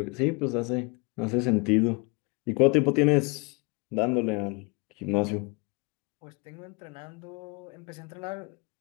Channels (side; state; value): right; quieter; 30.4 dB